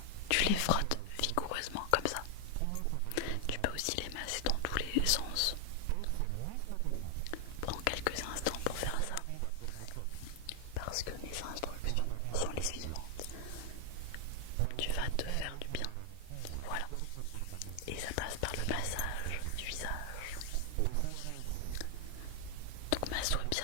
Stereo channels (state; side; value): different; both; correlation 0.01